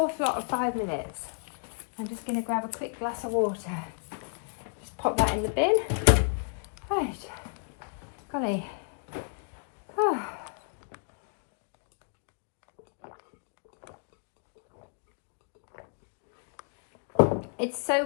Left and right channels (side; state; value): right; silent; 57 dB below the other